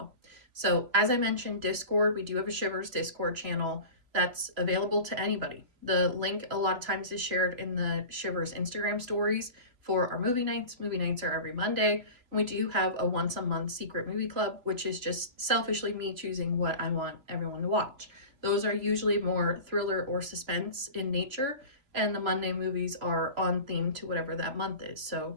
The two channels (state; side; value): late; left; 3.0 ms